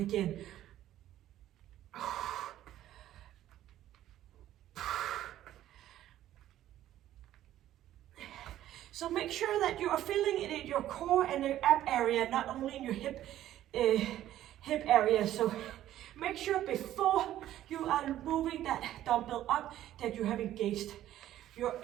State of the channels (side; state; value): left; quieter; 12.9 dB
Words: So make sure that you are feeling it in your core and your ab area, not only in your hip area. So make sure before you are moving that dumbbell up that you have engaged your